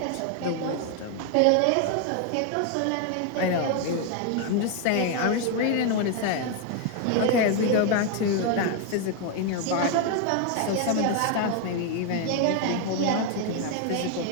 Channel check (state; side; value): different; both; correlation 0.01